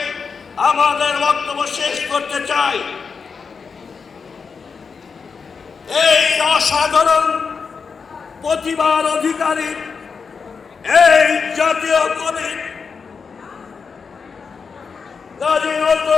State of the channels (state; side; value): quieter; right; 5.5 dB